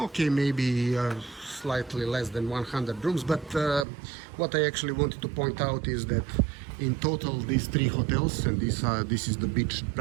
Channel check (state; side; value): drops out; left; at 3.9 s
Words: maybe slightly less than 100 rooms. But what I actually wanted to point out is that in total, these 3 hotels, and this is the beach,